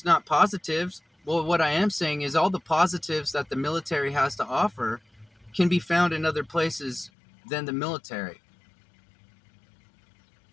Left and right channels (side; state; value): right; drops out; at 7.1 s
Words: not positives. Well, what I am saying is all the positives that the military has to offer can be found in other places than the military.